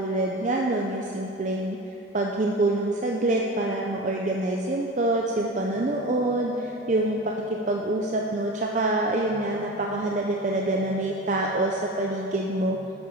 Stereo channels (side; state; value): both; normal; correlation 0.30